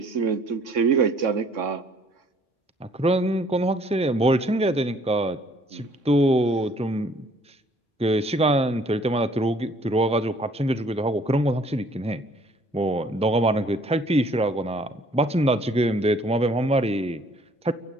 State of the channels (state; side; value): normal; both; correlation 0.60